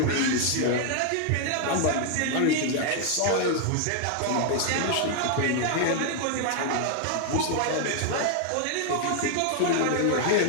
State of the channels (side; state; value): both; different; correlation 0.00